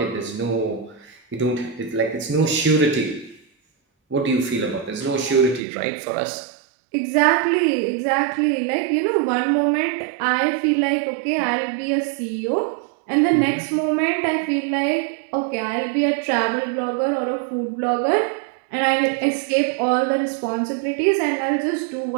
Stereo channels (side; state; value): left; drops out; at 5.6 s